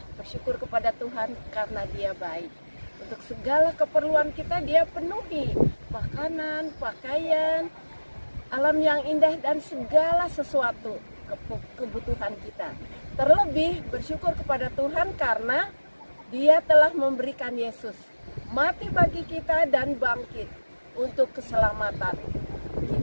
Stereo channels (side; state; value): both; inverted; correlation -1.00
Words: Bersyukur kepada Tuhan karena Dia baik. Untuk segala keperluan kita Dia penuhi. Makanan, pakaian, alam yang indah dan segala sesuatu kebutuhan kita. Terlebih bersyukur kepada Tuhan karena Dia telah memberikan Yesus mati bagi kita dan bangkit untuk keselamatan